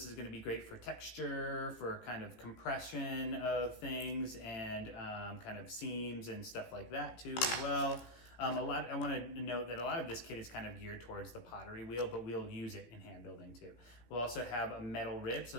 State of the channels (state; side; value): late; right; 18 ms